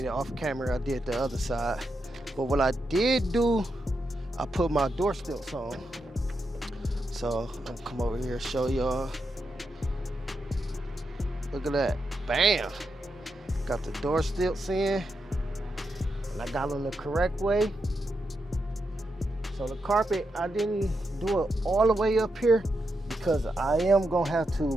it off camera. I did the other side, but what I did do, I put my door stilts on. So I'm gonna come over here and show y'all. Look at that, bam! Got the door stilts in, and I got them the correct way. So the carpet, I didn't do it all the way up here because I am gonna have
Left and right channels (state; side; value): normal; both; correlation 0.85